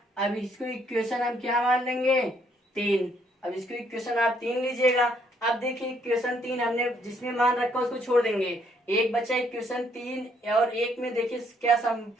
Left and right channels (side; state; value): both; normal; correlation 0.69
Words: अब इसको इक्वेशन हम क्या मान लेंगे, 3। अब इसको इक्वेशन आप 3 लीजिएगा। अब देखिए इक्वेशन 3 हमने जिसमें मान रखा उसको छोड़ देंगे, एक बचा इक्वेशन 3 और 1 में देखिए क्या